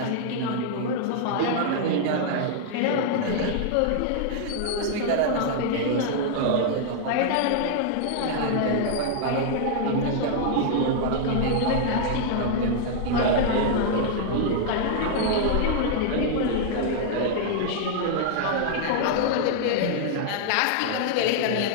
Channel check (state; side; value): different; both; correlation -0.01